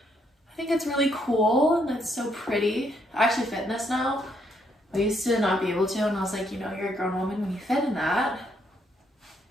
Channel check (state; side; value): normal; both; correlation 0.73